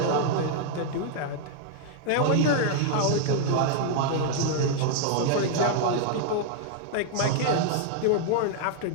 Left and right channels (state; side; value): different; both; correlation 0.00